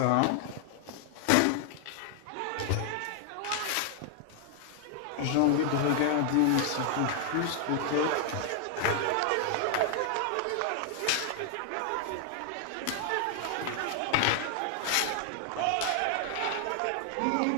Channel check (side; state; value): both; different; correlation 0.00